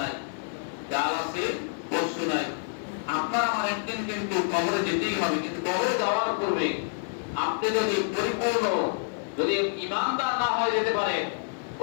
কাল আছে পরশু নাই, আপনার আমার একদিন কিন্তু কবরে যেতেই হবে, কিন্তু কবরে যাওয়ার পূর্বে আপনি যদি পরিপূর্ণ যদি ইমানদার না হয়ে যেতে পারে,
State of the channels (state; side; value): silent; right; 60 dB below the other